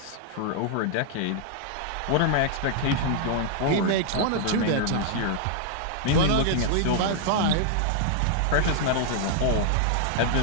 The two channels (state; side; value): different; both; correlation -0.01